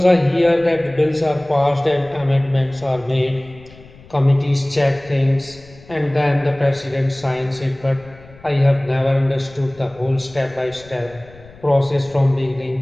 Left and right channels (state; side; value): noise; left; rumble, 23 dB below the sound